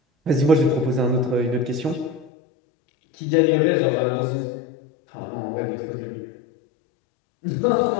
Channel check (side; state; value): right; drops out; at 2.3 s